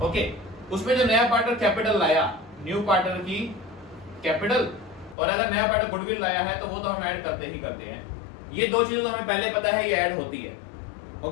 ओके, उसमें जो नया पार्टनर कैपिटल लाया, न्यू पार्टनर की कैपिटल, और अगर नया पार्टनर गुडविल लाया है तो वो तो हम ऐड करते ही करते हैं। ये दो चीजें तो हमें पहले पता है, ये ऐड होती है।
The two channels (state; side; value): drops out; right; at 5.2 s